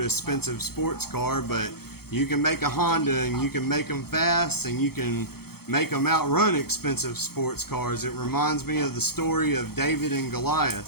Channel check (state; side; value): late; right; 0.95 ms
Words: expensive sports car, but you can make a Honda and you can make them fast and you can make them outrun expensive sports cars. It reminds me of the story of David and